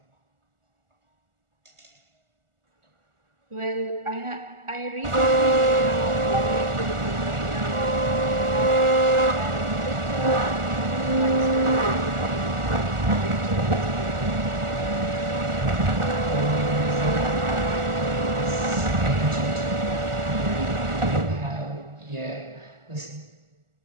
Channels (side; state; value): left; late; 1.4 ms